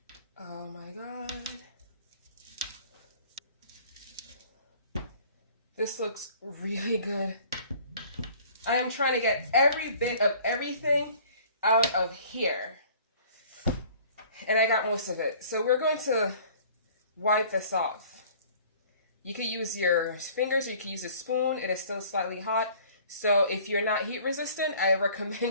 Oh my God. This looks really good. I am trying to get every bit of everything out of here. And I got most of it. So we're going to wipe this off. You could use your fingers, or you could use a spoon. It is still slightly hot. So if you're not heat resistant, I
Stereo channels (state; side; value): inverted; both; correlation -0.51